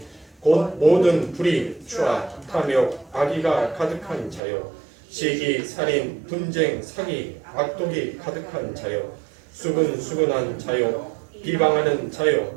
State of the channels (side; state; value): left; drops out; at 4.4 s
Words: 곧 모든 불의, 추악, 탐욕, 악의가 가득한 자요 시기, 살인, 분쟁, 사기, 악독이 가득한 자요 수근수근한 자요 비방하는